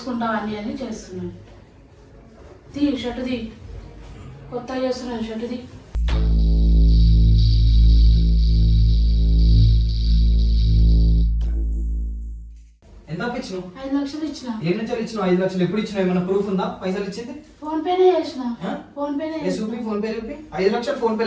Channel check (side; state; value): both; identical; correlation 1.00